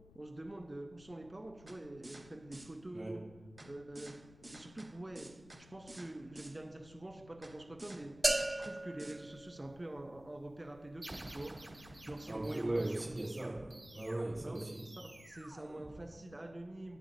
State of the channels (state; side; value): noise; left; rumble, 19 dB below the sound